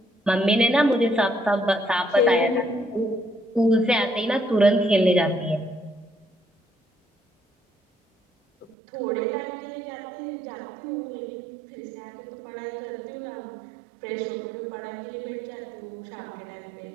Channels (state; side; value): drops out; left; at 8.8 s